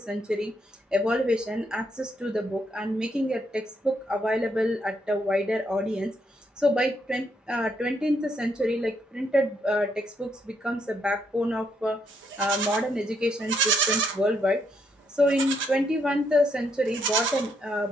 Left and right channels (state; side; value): normal; both; correlation 0.75